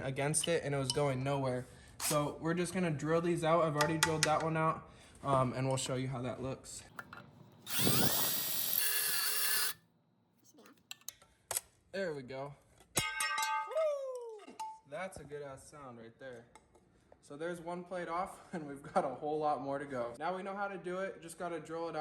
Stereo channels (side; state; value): both; identical; correlation 1.00